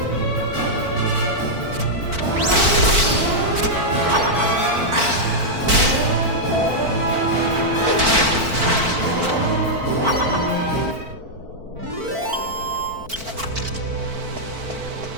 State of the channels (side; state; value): left; late; 4.5 ms